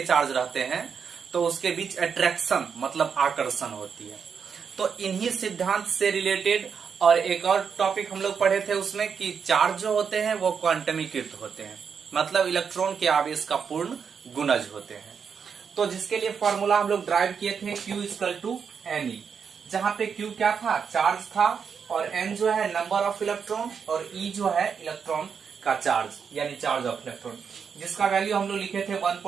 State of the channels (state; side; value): quieter; left; 6.5 dB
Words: चार्ज रहते हैं तो उसके बीच अट्रैक्शन मतलब आकर्षण होती है। तो इन्हीं सिद्धांत से रिलेटेड और एक और टॉपिक हम लोग पढ़े थे उसमें कि चार्ज जो होते हैं वो क्वांटमीकृत होते हैं, मतलब इलेक्ट्रॉन के आवेश का पूर्ण गुणज होते हैं। तो जिसके लिए फॉर्मूला हम लोग ड्राइव किए थे Q=Ne, जहां पे Q क्या था, चार्ज था, और N जो है नंबर ऑफ इलेक्ट्रॉन, और E जो है इलेक्ट्रॉन का चार्ज यानी चार्ज ऑफ इलेक्ट्रॉन, जिसका वैल्यू हम लोग लिखे थे